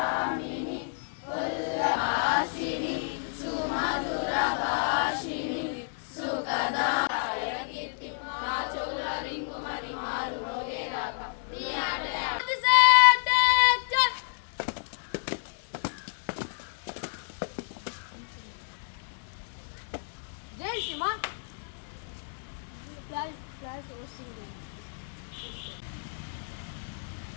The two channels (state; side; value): silent; right; digital silence